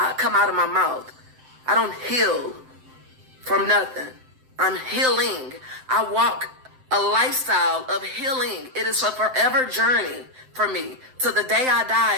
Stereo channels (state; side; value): late; left; 7.8 ms